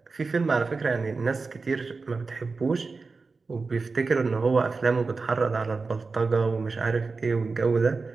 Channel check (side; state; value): left; quieter; 4.2 dB